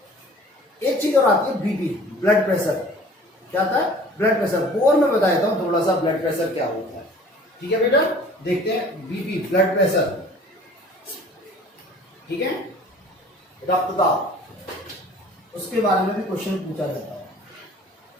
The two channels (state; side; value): normal; both; correlation 0.48